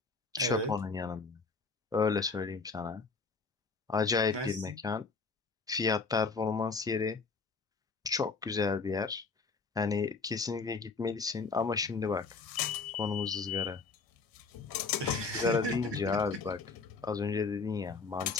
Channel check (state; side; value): quieter; right; 4.5 dB